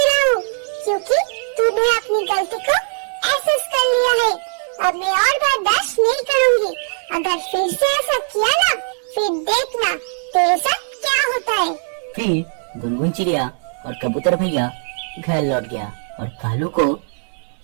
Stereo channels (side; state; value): left; silent; digital silence